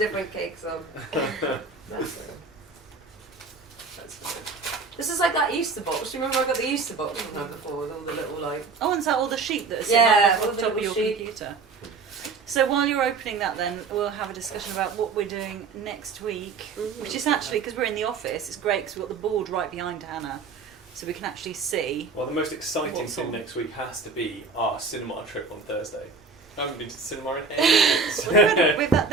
cakes on. Bless her. That's good. This is like that Easter box. Do you remember I got the Easter box from her before with all the little, like... Oh, and is that all the sheet that is Yeah, on all the the top of little your sheet. computer? So while you're opening that then, we'll have a discussion about what we're doing next week, which is actually, because we're in the office, it's great because we've got the board right behind Hannah. so we can actually see. Well, the most exciting What's thing on? next week has to be our cinema trip on Thursday. I haven't been to the cinema in ages.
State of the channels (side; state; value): left; quieter; 4.5 dB